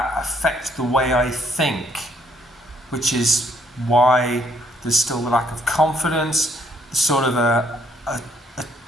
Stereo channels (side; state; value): both; normal; correlation 0.67